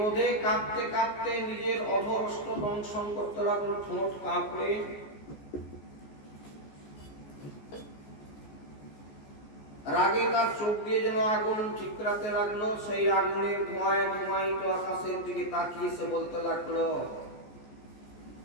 কাঁপতে কাঁপতে নিজের অধরষ্ট দংশন করতে লাগলো, ঠোঁট কাঁপড়ে রাগে তার চোখ দিয়ে যেন আগুন ঠিকরাতে লাগলো। সেই আগুনের ধোঁয়ায় ধোঁয়ায়িত আকাশের দিকে তাকিয়ে সে বলতে লাগলো,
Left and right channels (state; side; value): late; right; 14 ms